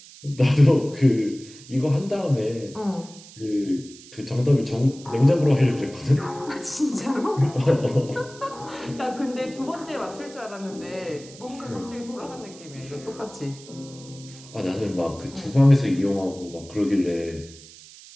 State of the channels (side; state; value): right; noise; hiss, 19 dB below the sound